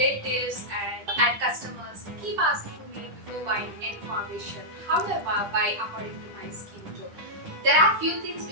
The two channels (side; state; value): left; late; 10 ms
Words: and customers keep asking me before buying any foundation, how do I buy according to my skin tone? There are few things